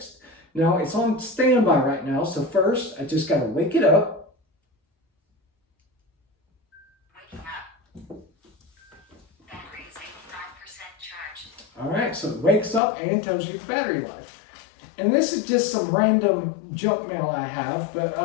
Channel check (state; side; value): drops out; right; at 12.8 s